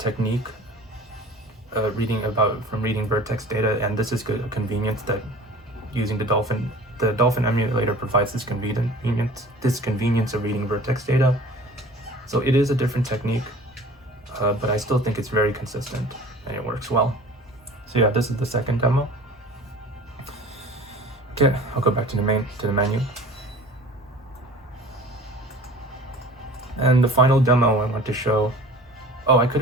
from reading vertex data, and this is a convenience that using the Dolphin emulator provides this convenience of reading vertex data. So it is a different technique, but I still think it's very consistent and it works well. So yeah, this is the second demo. Okay, I'll go back to the menu. And the final demo I want to show. Oh, I could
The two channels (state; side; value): normal; both; correlation 0.44